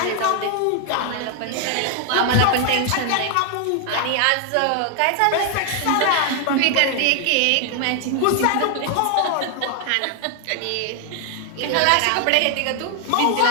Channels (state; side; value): different; both; correlation 0.00